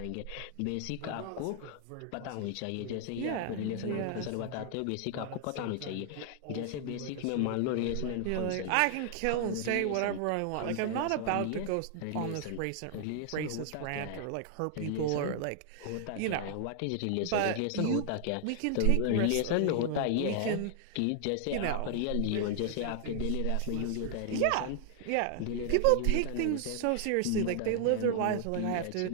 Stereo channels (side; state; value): both; different; correlation 0.00